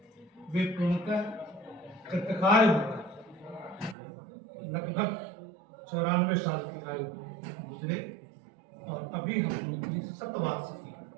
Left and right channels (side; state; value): left; drops out; at 4.0 s